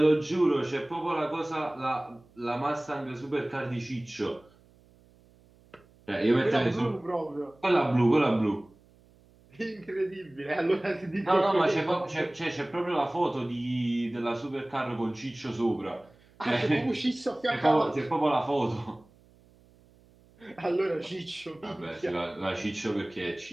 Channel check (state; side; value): noise; right; hum, 29 dB below the sound